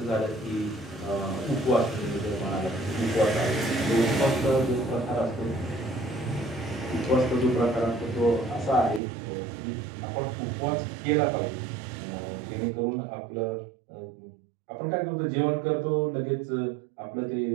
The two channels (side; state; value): left; drops out; at 9.0 s